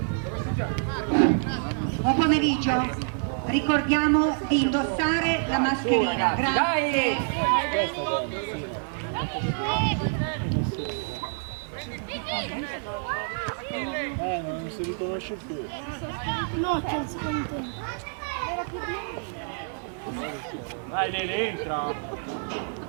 Buon pomeriggio. Ricordiamo di indossare la mascherina. Grazie. Non si riconosce più. No, c'è il secondo tempo. Vai Lele, entra!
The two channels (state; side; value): silent; left; 60 dB below the other